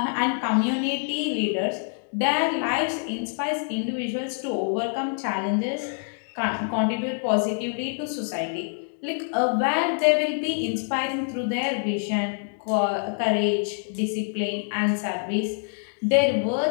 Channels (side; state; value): right; silent; digital silence